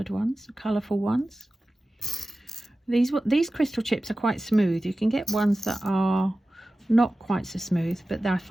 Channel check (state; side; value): normal; both; correlation 0.95